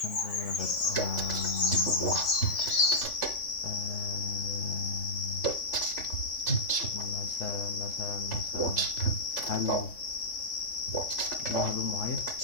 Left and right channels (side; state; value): right; late; 3.5 ms